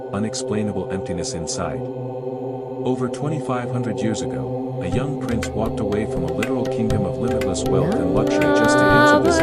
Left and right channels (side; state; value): both; identical; correlation 1.00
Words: unexplainable emptiness inside? Over 2,500 years ago, a young prince walked away from a literal kingdom of limitless wealth and luxury just to answer this